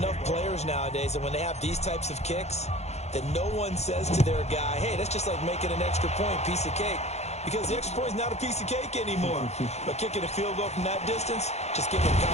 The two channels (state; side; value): late; right; 0.32 ms